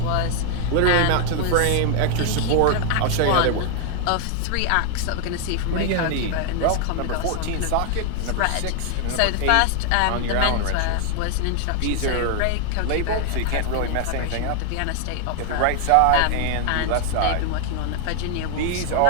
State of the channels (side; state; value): both; different; correlation 0.00